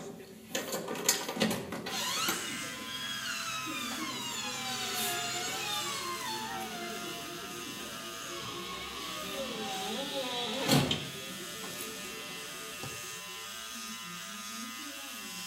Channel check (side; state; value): both; identical; correlation 1.00